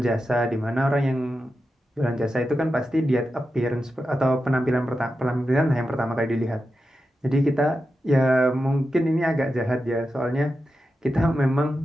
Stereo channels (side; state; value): both; normal; correlation 0.90